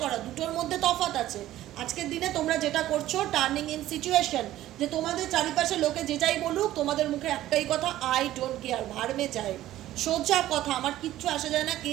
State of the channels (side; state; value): left; quieter; 14.2 dB